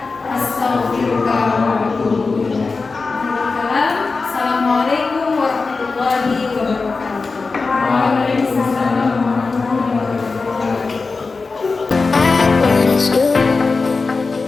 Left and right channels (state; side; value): quieter; right; 4.2 dB